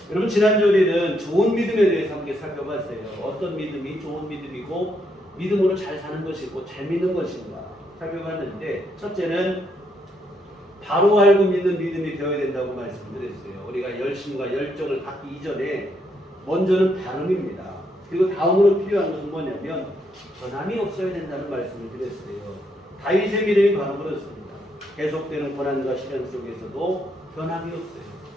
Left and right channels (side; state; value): both; normal; correlation 0.76